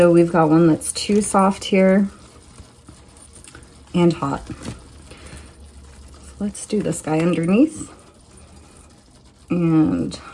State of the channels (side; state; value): both; identical; correlation 1.00